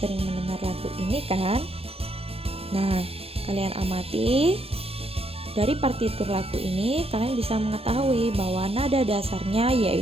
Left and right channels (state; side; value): late; left; 0.28 ms